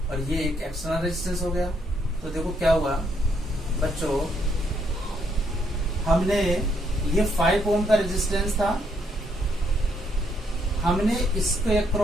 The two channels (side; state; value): both; normal; correlation 0.73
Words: और ये एक एक्सटर्नल रेजिस्टेंस हो गया। तो देखो क्या हुआ बच्चों, हमने ये 5 ओम का रेजिस्टेंस था, हमने इसके